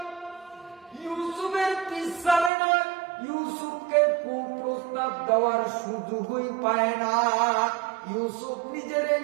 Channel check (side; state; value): left; drops out; at 2.5 s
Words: ইউসুফের পিছনে না, ইউসুফকে কুপ্রস্তাব দেওয়ার সুযোগই পায় না। ইউসুফ নিজের